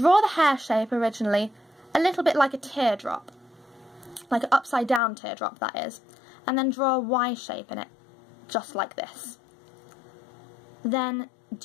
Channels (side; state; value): right; drops out; at 5.0 s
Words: the hair shape originally a little bit like a teardrop, like an upside down teardrop, that is, and then draw a Y shape in it, just like this. Then